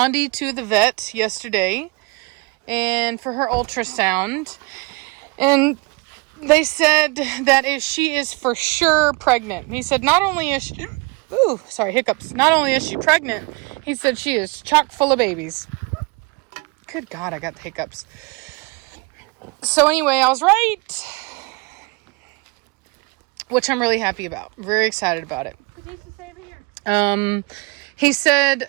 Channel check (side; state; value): left; quieter; 28.1 dB